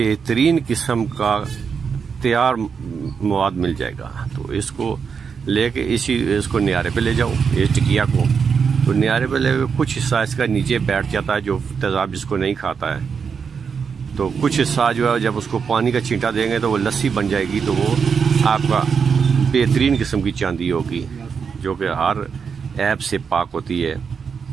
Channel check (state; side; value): quieter; left; 6.2 dB